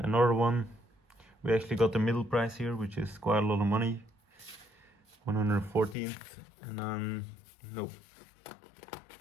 another one, we actually got the middle prize here, which is quite a lot of money, 114th. And then nope,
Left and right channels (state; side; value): drops out; right; at 6.0 s